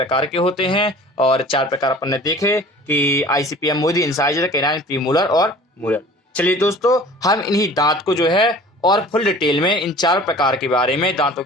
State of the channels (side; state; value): both; normal; correlation 0.45